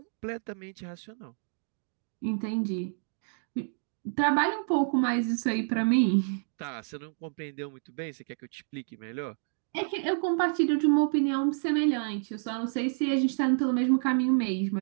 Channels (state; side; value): silent; left; digital silence